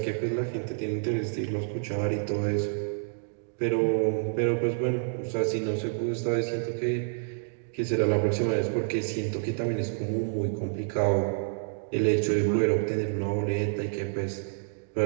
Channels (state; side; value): silent; left; digital silence